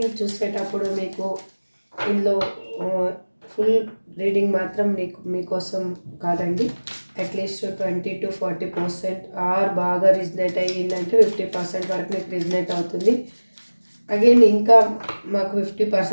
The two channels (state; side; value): inverted; both; correlation -1.00